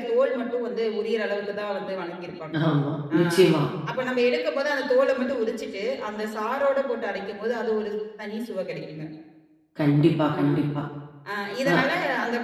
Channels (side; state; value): both; identical; correlation 1.00